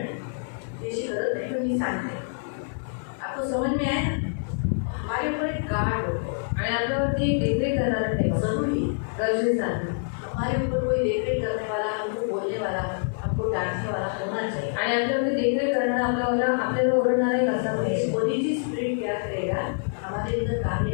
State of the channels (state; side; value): silent; right; 61 dB below the other